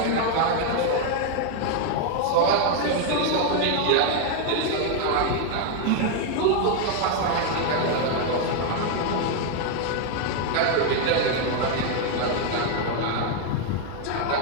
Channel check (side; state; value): both; different; correlation 0.00